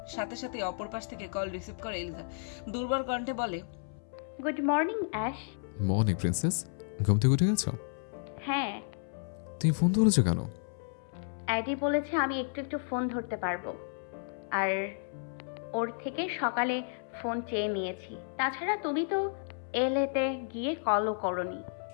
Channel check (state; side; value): silent; right; 56 dB below the other